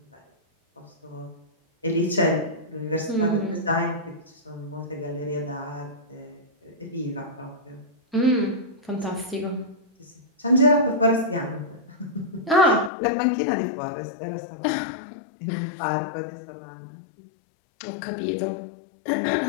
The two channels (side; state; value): right; drops out; at 12.9 s